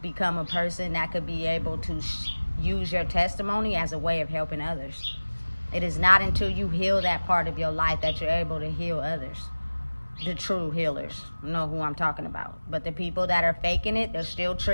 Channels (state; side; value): inverted; both; correlation -1.00